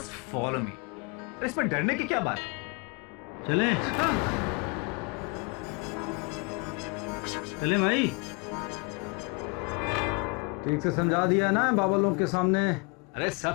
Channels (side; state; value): right; quieter; 30.9 dB